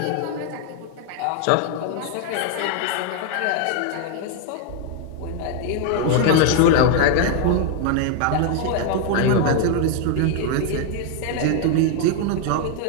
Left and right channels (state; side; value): different; both; correlation 0.00